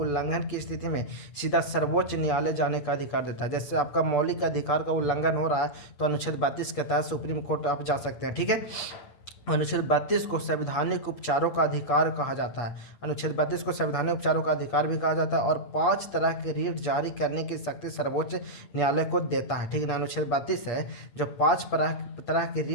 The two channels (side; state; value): right; late; 8.5 ms